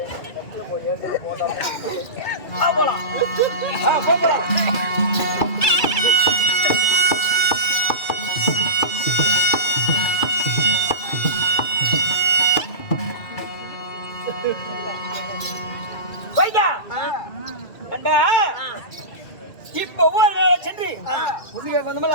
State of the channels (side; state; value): right; late; 2.3 ms